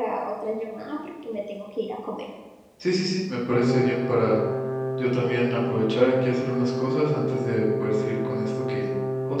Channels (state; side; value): identical; both; correlation 1.00